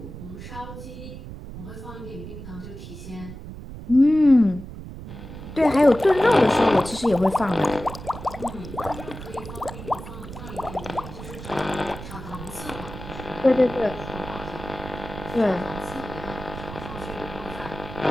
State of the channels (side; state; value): right; noise; rumble, 11 dB below the sound